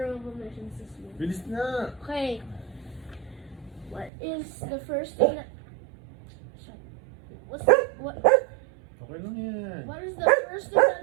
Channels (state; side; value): drops out; left; at 4.1 s